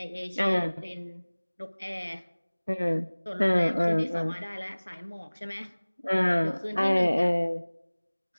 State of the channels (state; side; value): inverted; both; correlation -1.00